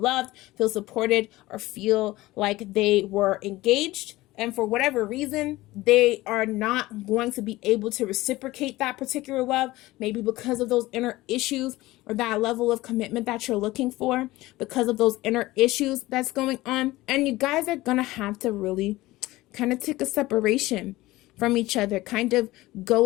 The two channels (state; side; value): quieter; right; 18.4 dB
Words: feel supported, or feel like they were engaged. And for whatever reason, they are not going to be able to reciprocate that particular love, maybe because of those inner issues or that level of commitment that you're looking for, because of those inner issues that's going on. And you guys are going to have to really kind of take a separation from each other, kind of